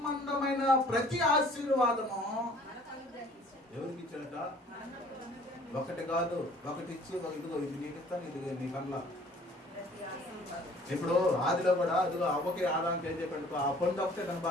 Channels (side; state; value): both; normal; correlation 0.53